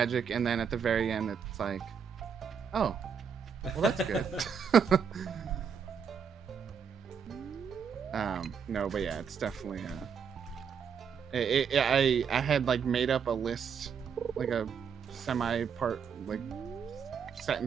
and then at the very end, it's like, oh, well, that's good. No, but yeah, it's definitely. I had like made up a list, like a semi-part, like set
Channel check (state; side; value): quieter; left; 6.8 dB